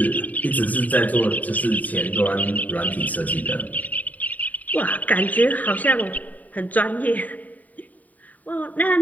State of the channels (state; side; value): late; right; 0.076 ms